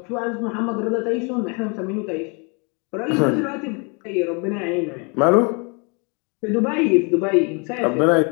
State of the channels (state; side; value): quieter; right; 33.4 dB